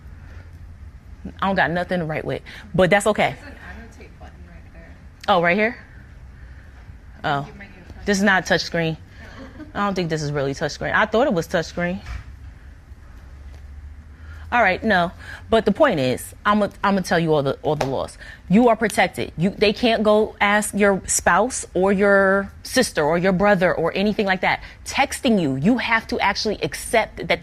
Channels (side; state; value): both; identical; correlation 1.00